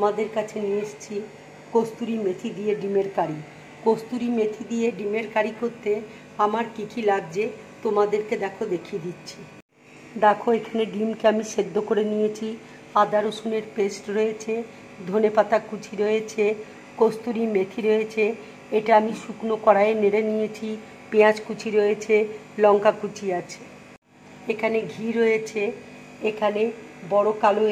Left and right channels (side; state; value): both; identical; correlation 1.00